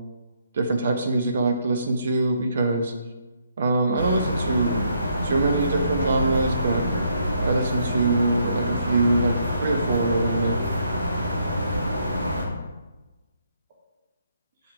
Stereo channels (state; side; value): inverted; both; correlation -0.73